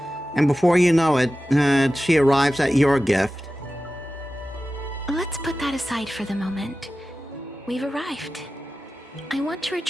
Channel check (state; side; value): normal; both; correlation 0.94